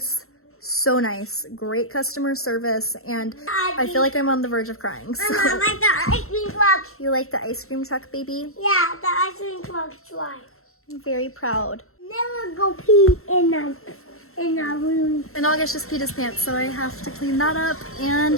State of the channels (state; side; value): late; right; 0.62 ms